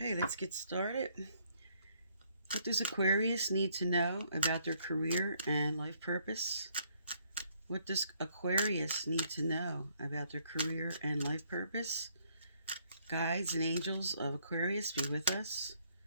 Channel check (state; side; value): inverted; both; correlation -0.69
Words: let's get started. What does Aquarius need to know about their career and life purpose? What does Aquarius need to know about their career and life purpose? Guides and angels of Aquarius, be with us.